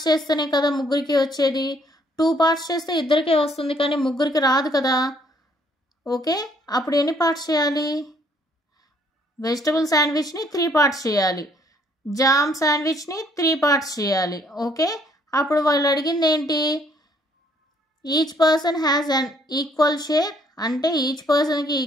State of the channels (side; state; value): both; normal; correlation 0.65